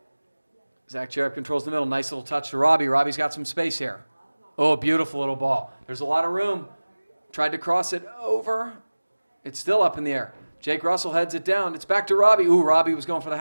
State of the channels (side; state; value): both; inverted; correlation -1.00